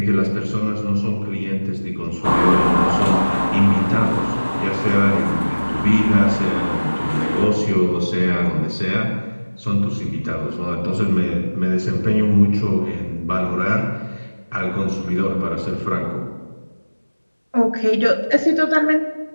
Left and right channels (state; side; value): inverted; both; correlation -1.00